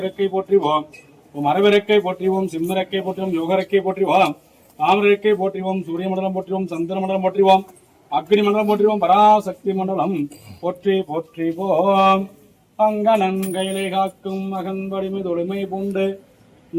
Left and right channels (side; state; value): both; identical; correlation 1.00